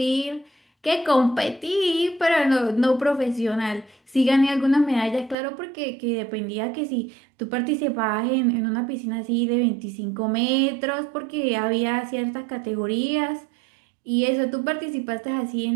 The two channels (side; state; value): left; drops out; at 5.4 s